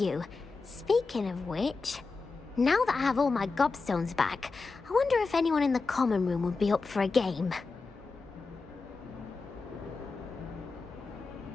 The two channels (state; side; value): quieter; right; 4.1 dB